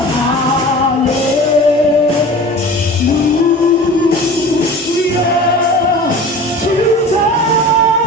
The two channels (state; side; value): normal; both; correlation 0.39